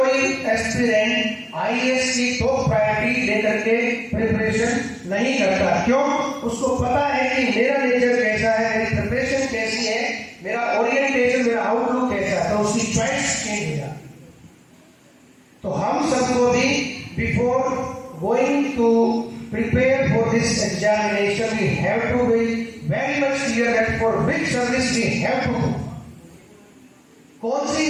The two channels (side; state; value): both; identical; correlation 1.00